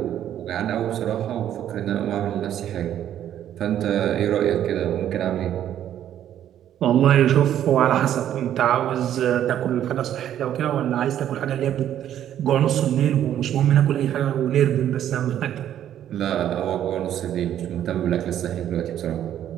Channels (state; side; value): quieter; left; 10.9 dB